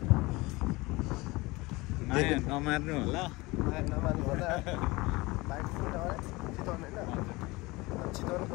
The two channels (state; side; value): quieter; right; 22.5 dB